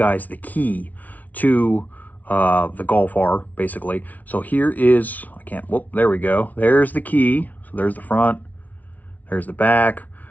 the key to the Golf R, basically. So here is, there we go. There's the key. So there's the front, there's the back.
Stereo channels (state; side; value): late; right; 0.074 ms